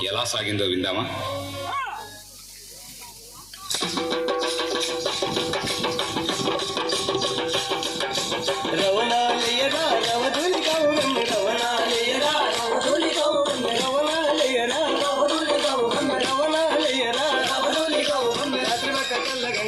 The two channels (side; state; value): left; noise; hum, 27 dB below the sound